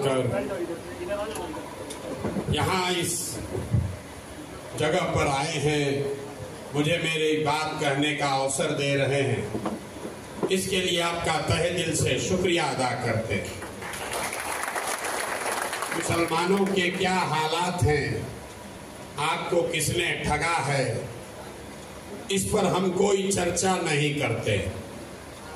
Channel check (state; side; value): identical; both; correlation 1.00